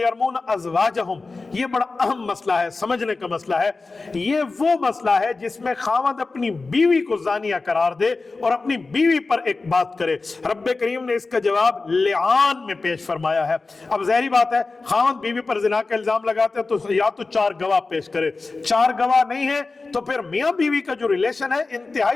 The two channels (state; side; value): quieter; right; 3.8 dB